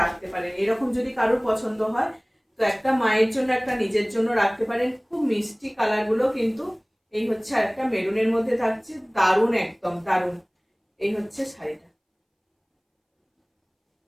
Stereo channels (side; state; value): both; identical; correlation 1.00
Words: রাখতে পারেন, এরকম যদি কারোর পছন্দ হয় তো একটা মায়ের জন্য একটা নিজের জন্য রাখতে পারেন। খুব মিষ্টি কালারগুলো কিন্তু। এই হচ্ছে আর একটা মেরুনের মধ্যে থাকছে, দারুণ, একদম দারুণ। এই হচ্ছে শাড়িটা।